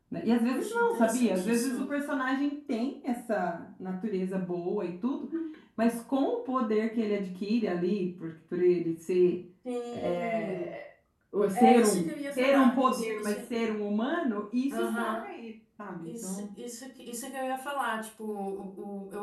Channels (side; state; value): both; identical; correlation 1.00